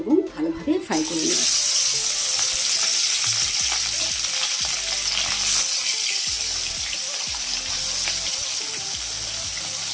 ভালোভাবে ফ্রাই করে নেব।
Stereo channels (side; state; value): both; identical; correlation 1.00